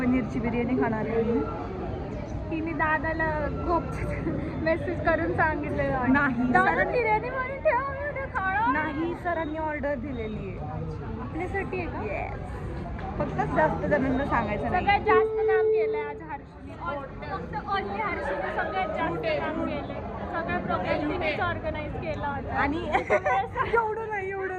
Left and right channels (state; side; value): identical; both; correlation 1.00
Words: बिर्याणी खाणार आहे. तिने दादाला खूप मेसेज करून सांगितलेलं नाही दादा बिर्याणी म्हणून ठेवा. नाही सरांनी ऑर्डर दिलेली आहे आपल्यासाठी आहे का? येस, फक्त जास्त जणांना सांगायचं नाही. सगळ्यात जास्त काम केलंय आज हर्षीने. फक्त ओनली हर्षीने सगळ्यात जास्त काम केलंय. सगळ्या प्रोग्राम तिनेच ऑर्गनाईज केला होता. आणि एवढं नाही